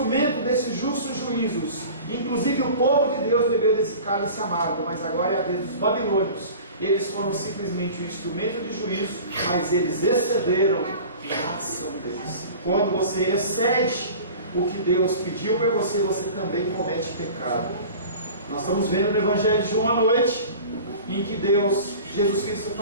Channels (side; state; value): both; inverted; correlation -0.39